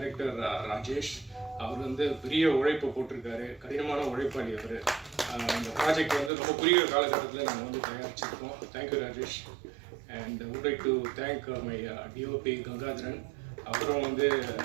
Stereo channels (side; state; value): left; drops out; at 6.3 s